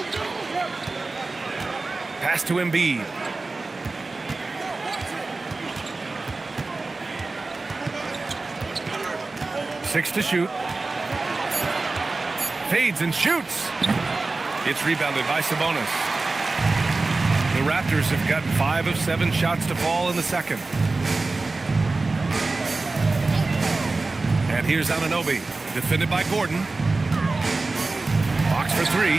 Pass to Embiid. Six to shoot. Fades and shoots. It's rebounded by Sabonis. The Raptors have gotten 5 of 7 shots to fall in the second. And here's Anunoby, defended by Gordon. Box for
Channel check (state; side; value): quieter; left; 3.5 dB